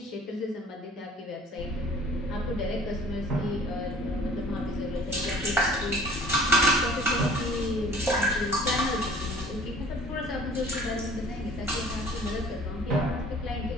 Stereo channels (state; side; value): normal; both; correlation 0.50